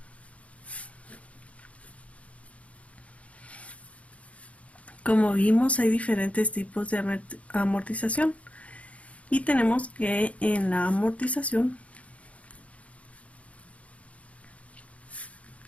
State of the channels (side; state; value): right; late; 0.065 ms